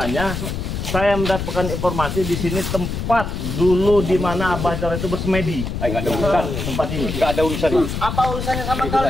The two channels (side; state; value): left; noise; rumble, 4 dB below the sound